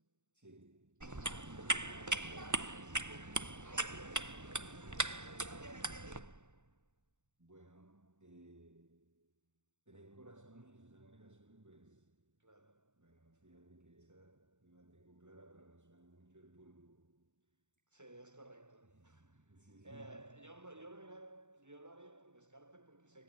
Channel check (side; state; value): left; late; 0.84 ms